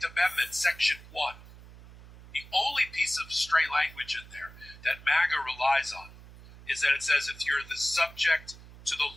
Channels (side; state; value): right; noise; hum, 19 dB below the sound